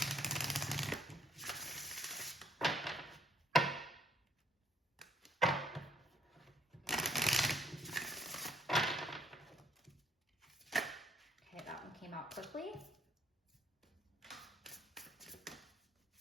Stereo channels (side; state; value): both; normal; correlation 0.67